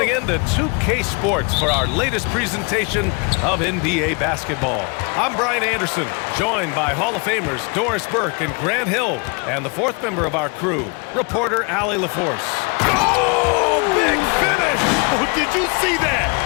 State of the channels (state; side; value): quieter; right; 32.2 dB